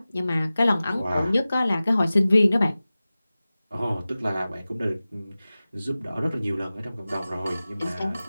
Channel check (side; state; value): both; inverted; correlation -0.97